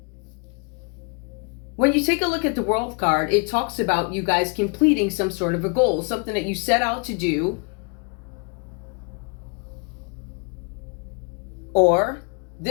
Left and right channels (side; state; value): right; quieter; 35.0 dB